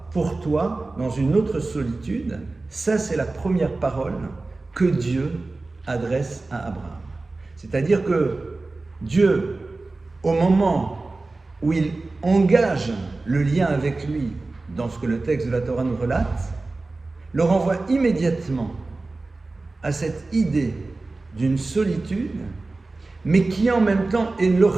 pour toi dans une autre solitude. Ça, c'est la première parole que Dieu adresse à Abraham. C'est-à-dire que Dieu, au moment où il engage le lien avec lui dans ce que le texte de la Torah nous relate, le renvoie immédiatement à cette idée d'une solitude, mais qui en même temps est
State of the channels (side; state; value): left; quieter; 3.4 dB